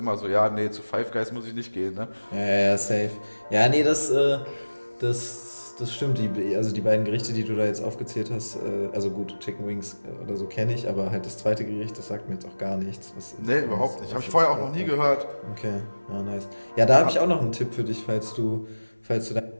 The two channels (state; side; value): inverted; both; correlation -1.00